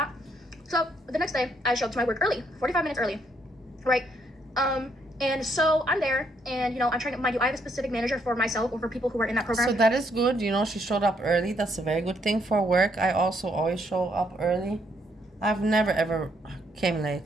So the next day, I show up to my work early, 45 minutes early, right? And so I'm there, and I'm trying to, mind you, I have a specific manager for myself or for people who are in that program. So that is good. She showed up early. That's a very good thing for work. I also always show up early. I've never ever came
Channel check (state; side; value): normal; both; correlation 0.72